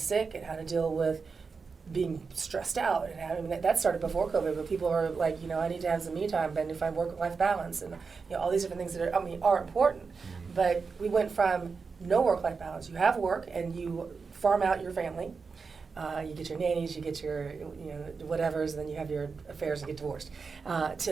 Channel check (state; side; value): quieter; left; 5.0 dB